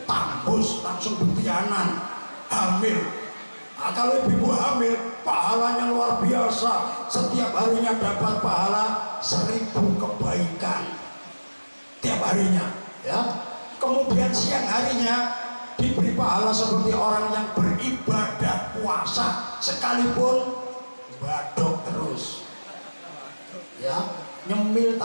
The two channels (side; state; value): both; inverted; correlation -1.00